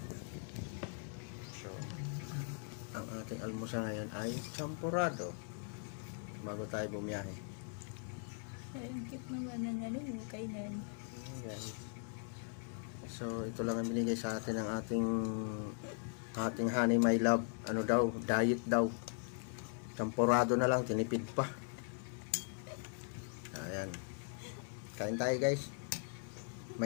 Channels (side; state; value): right; silent; 51 dB below the other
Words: So, ang ating almusal ngayon ay champurado. Bago tayo bumiyahe. Ang cute naman ng ano, kainan. Ayan. So, ito lang ang binigay sa atin ng ating honey my love. Ano daw, diet daw. Champurado na lang, tinipid pa. Ayan. Kain tayo guys.